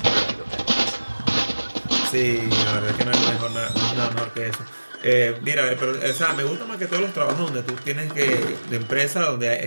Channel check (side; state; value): both; inverted; correlation -1.00